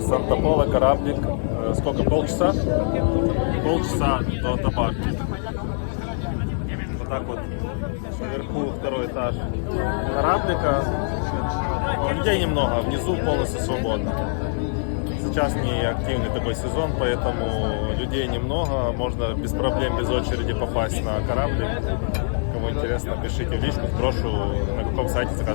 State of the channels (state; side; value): silent; right; 55 dB below the other